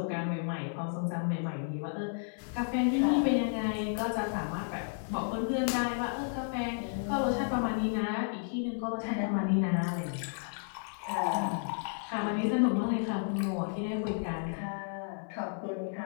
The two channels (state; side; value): silent; right; 56 dB below the other